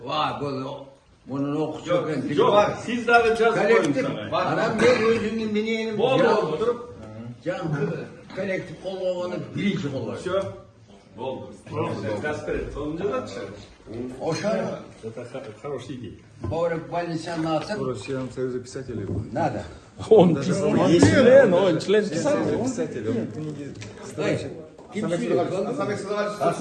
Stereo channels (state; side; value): identical; both; correlation 1.00